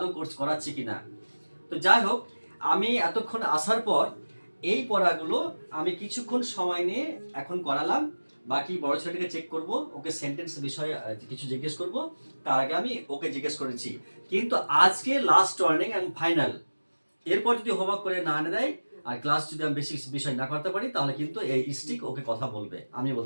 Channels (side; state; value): both; inverted; correlation -1.00